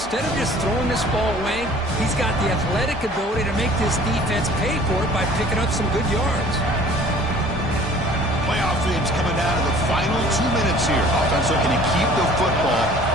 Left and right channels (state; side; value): normal; both; correlation 0.50